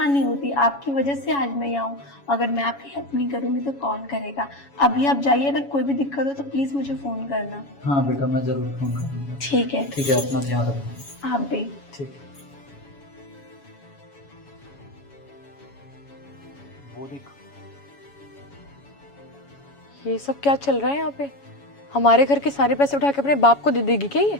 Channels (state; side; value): late; right; 7.2 ms